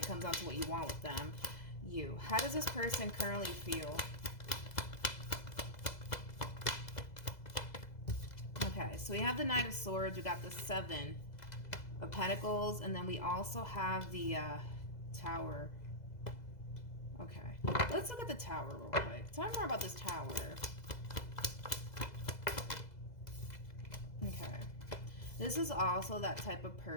comes down to what you want with them. How does this person currently feel? Okay, so we have the Knight of Swords. We got the Seven of Pentacles. And then we also have the Tower. Okay, let's look at the Tower real quick. Tell me more about this Tower. Okay. This is also that type of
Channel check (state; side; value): late; right; 2.0 ms